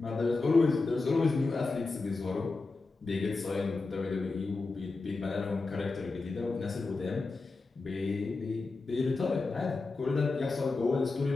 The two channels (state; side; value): quieter; right; 3.7 dB